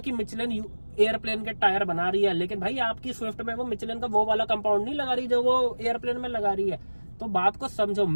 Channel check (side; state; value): both; inverted; correlation -1.00